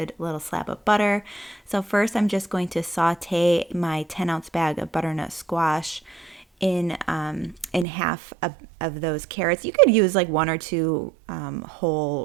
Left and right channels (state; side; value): drops out; left; at 7.9 s